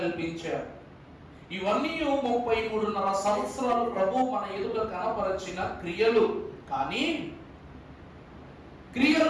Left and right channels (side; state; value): both; identical; correlation 1.00